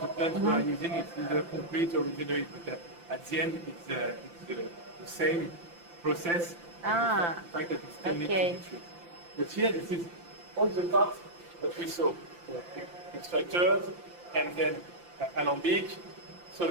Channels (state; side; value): late; left; 5.8 ms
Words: plant we are using, it's either concrete or resinoid. But at the end, it's the same process. Ah, The fact that it still needs okay. to be treated. But here, this is all the parts that we saw. So, extractors, and then alembic,